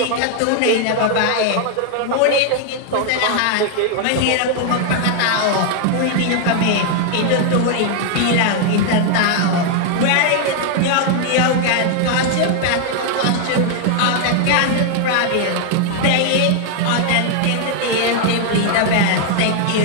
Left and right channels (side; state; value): both; different; correlation 0.00